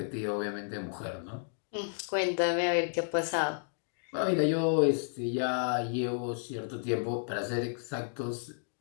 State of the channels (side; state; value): right; silent; digital silence